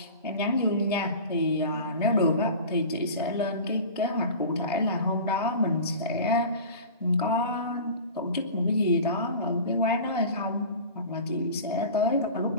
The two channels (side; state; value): both; inverted; correlation -0.36